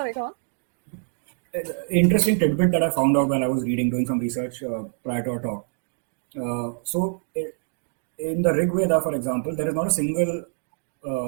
go on. Interesting tidbit that I found out while I was doing some research prior to our talk. In the Rig Veda, for example, there is not a single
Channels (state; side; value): silent; left; digital silence